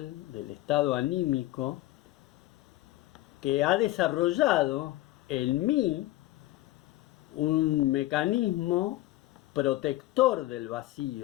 del estado anímico, que ha desarrollado en mí un mecanismo protector del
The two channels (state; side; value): quieter; right; 16.8 dB